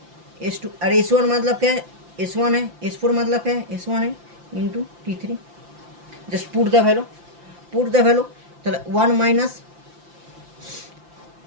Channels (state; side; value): late; left; 5.8 ms